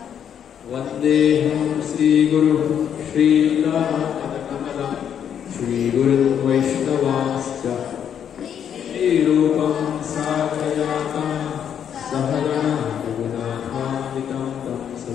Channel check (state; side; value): quieter; right; 8.7 dB